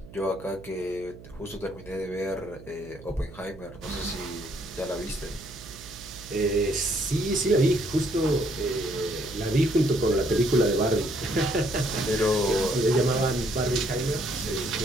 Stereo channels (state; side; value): noise; right; hum, 18 dB below the sound